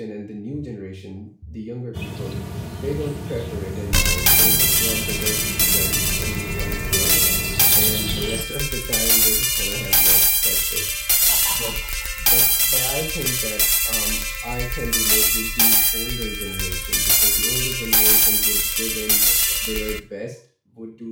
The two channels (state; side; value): identical; both; correlation 1.00